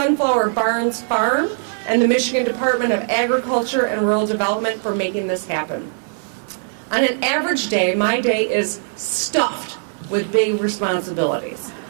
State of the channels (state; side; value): silent; left; 58 dB below the other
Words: Barns Farm, and the Michigan Department of Agriculture and Rural Development for making this happen. On an average day, my day is stuffed with big responsibilities.